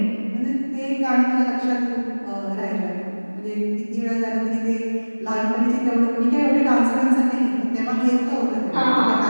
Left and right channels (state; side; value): inverted; both; correlation -1.00